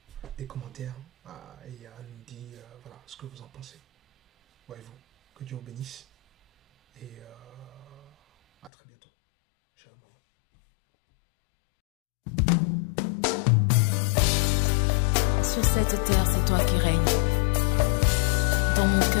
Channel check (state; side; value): drops out; right; at 8.7 s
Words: des commentaires et à nous dire, voilà, ce que vous en pensez. Voyez-vous. Que Dieu vous bénisse. Et à très bientôt. Shalom. Sur cette terre, c'est toi qui règnes. Dans mon